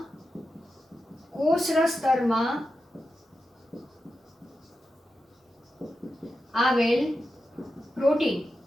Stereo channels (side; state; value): both; normal; correlation 0.90